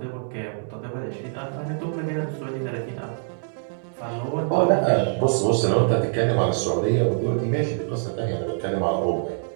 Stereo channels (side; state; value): left; silent; digital silence